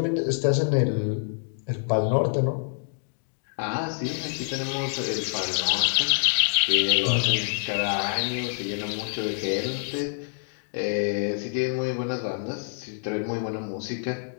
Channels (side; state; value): right; silent; digital silence